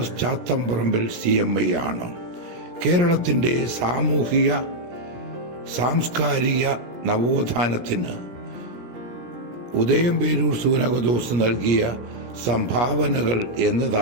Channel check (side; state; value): left; late; 17 ms